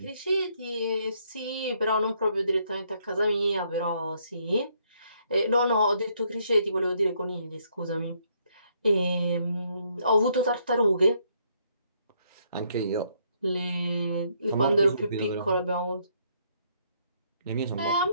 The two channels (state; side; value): inverted; both; correlation -0.71